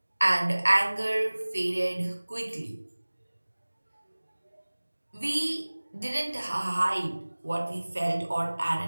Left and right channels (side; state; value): both; inverted; correlation -1.00